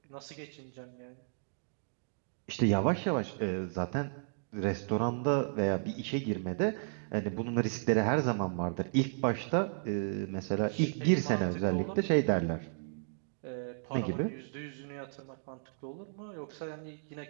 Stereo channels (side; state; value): left; silent; digital silence